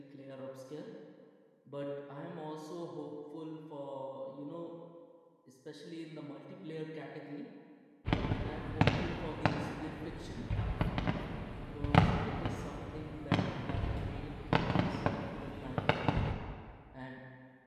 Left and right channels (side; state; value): both; identical; correlation 1.00